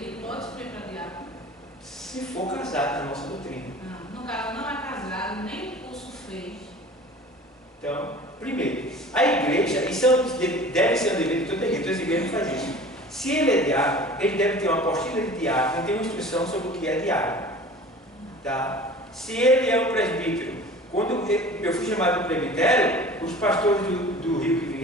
pode subir para diácono? Se for casado, na nossa doutrina. Não, no caso não é casado, nem curso fez. Então, primeiro, a igreja, isso deve ser um dever de toda a igreja, todas as igrejas fazem isso. Se ele é diácono, ele deve ter uma apostila de diácono, ele tem uma instrução sobre o que é diácono. Tá? Se ele é um presbítero, quando eu fui chamado para o presbitério, os pastores do Rio que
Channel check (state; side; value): normal; both; correlation 0.42